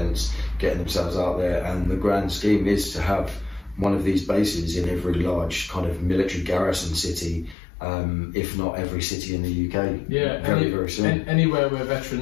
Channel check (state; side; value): drops out; right; at 7.6 s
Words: getting themselves out there. And the grand scheme is to have one of these bases in every large kind of military garrison city, if not every city in the UK. Yeah, very soon. Anywhere where